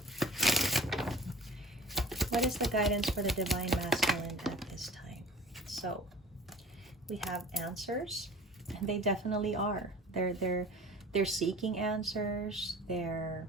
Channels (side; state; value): both; normal; correlation 0.43